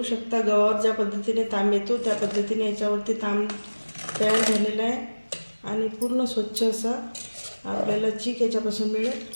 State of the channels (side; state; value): both; inverted; correlation -1.00